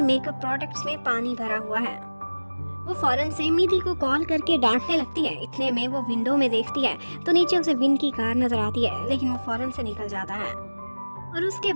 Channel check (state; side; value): inverted; both; correlation -1.00